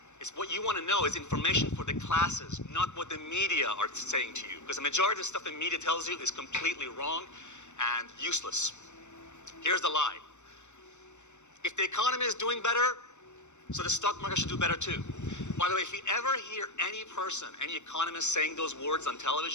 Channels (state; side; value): late; right; 0.83 ms